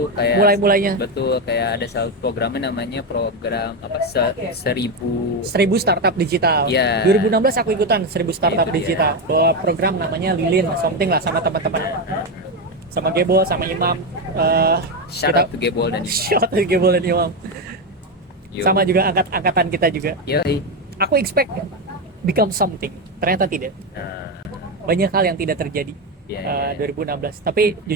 kayak mulai-mulainya betul, kayak ada satu programnya namanya program apa 1000 startup digital. ya. 2016 aku ikutan 1000 startup Itu dia. digital. Bawa program namanya Lilin something lah, sama teman-teman. Sama Gebol, sama Imam. Shout out to Gebol dan Shout out to Gebol dan Imam. Yo. Sama juga angkatan kita juga. Yoi. Aku expect become something. Ternyata tidak. Nah, Banyak hal yang tidak terjadi. ya, 2016. Tapi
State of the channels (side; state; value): both; normal; correlation 0.11